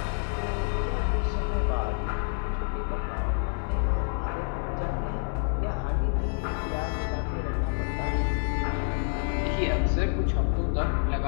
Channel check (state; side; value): silent; right; 59 dB below the other